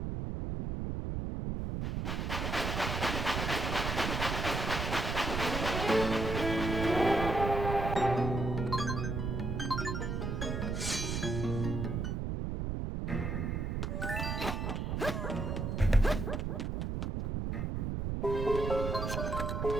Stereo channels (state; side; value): noise; right; rumble, 2 dB below the sound